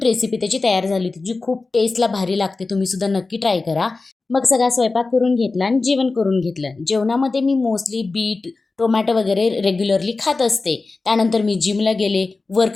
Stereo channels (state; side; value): quieter; right; 3.7 dB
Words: रेसिपी त्याची तयार झाली होती, जी खूप टेस्टला भारी लागते. तुम्ही सुद्धा नक्की ट्राय करा. मग सगळा स्वयंपाक करून घेतला आणि जेवण करून घेतलं. जेवणामध्ये मी मोस्टली बीट, टोमॅटो वगैरे रेग्युलरली खात असते. त्यानंतर मी जिमला गेले,